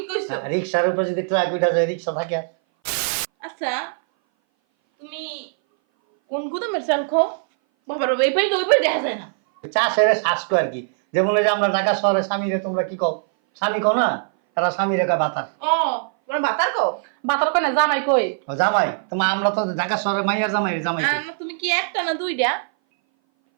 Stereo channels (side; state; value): left; silent; 59 dB below the other